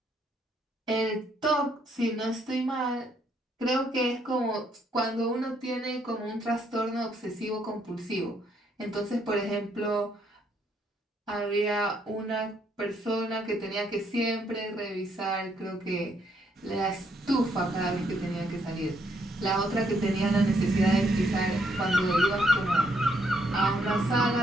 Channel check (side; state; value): both; normal; correlation 0.72